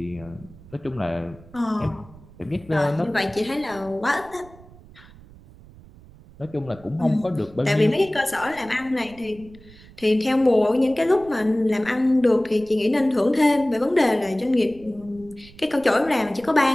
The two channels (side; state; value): right; noise; rumble, 22 dB below the sound